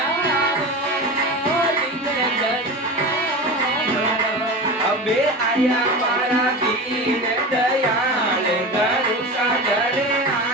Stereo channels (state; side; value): normal; both; correlation 0.28